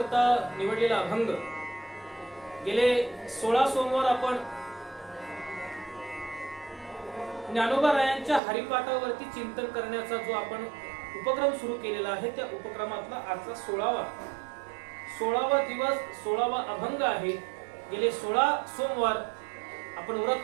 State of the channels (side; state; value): left; drops out; at 8.4 s